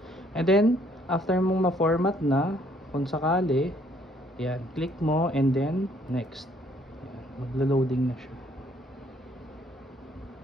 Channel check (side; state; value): both; normal; correlation 0.64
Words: And then, after mong ma-format na, kung sakali, yan, click mo and then next. Yan, maglo-loading na siya.